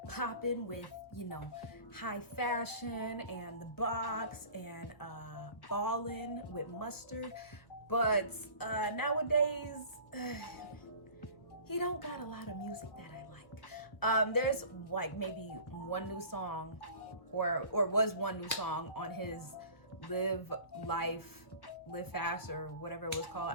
popping with, you know, high fashion and the box and ballin' with mustard, but nowadays, he don't got a lot of music that I like. There's like maybe one new song or was one new song on his Live Life, Live Fast or whatever it was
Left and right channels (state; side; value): late; right; 1.2 ms